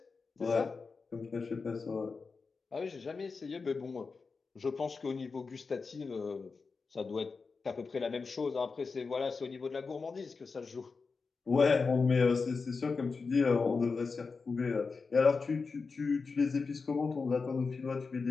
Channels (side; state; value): right; quieter; 4.6 dB